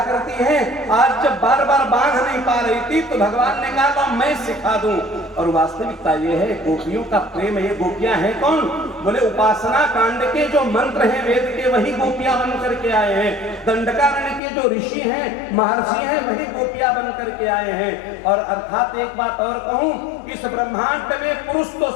करती है, आज जब बार बार बांध नहीं पा रही थी, तो भगवान ने कहा तो मैं सिखा दूं। और वास्तविकता ये है गोपियों का प्रेम, ये गोपियां हैं कौन? बोले उपासना कांड के जो मंत्र हैं वेद के, वही गोपियां बन करके आए हैं। दंडकारण्य के जो ऋषि हैं, महर्षि हैं, वही गोपियां बन करके आए हैं। और अर्थात एक बात और कहूं, इस ब्रह्मांड में पुरुष तो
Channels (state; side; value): drops out; right; at 14.4 s